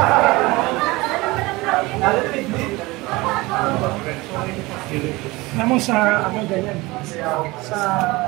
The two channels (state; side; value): quieter; left; 22.0 dB